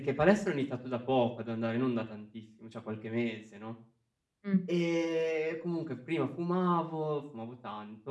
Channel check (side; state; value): both; identical; correlation 1.00